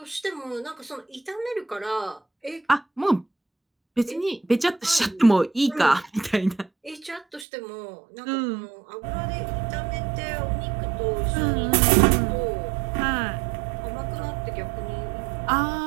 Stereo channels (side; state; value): left; drops out; at 7.5 s